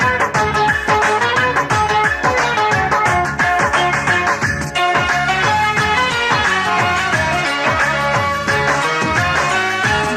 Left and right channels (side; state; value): both; identical; correlation 1.00